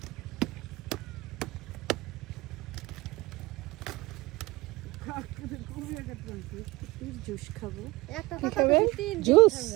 জুস খাবো, জুস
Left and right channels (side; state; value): left; quieter; 21.1 dB